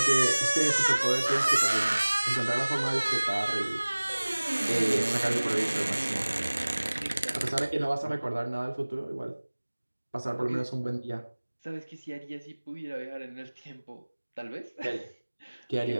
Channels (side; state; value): both; inverted; correlation -1.00